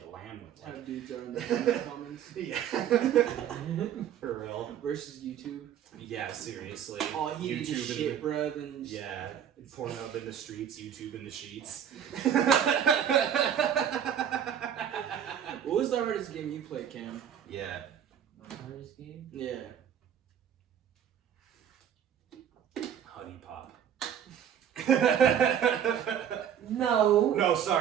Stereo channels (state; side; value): quieter; left; 9.2 dB